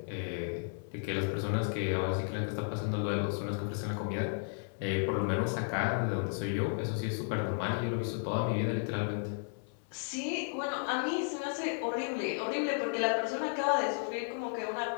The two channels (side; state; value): right; silent; 55 dB below the other